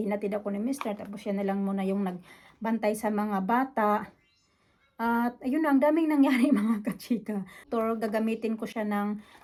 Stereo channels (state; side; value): identical; both; correlation 1.00